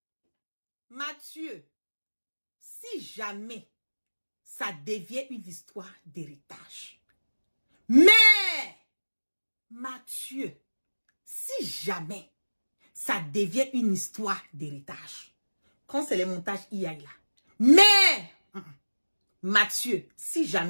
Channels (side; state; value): both; inverted; correlation -1.00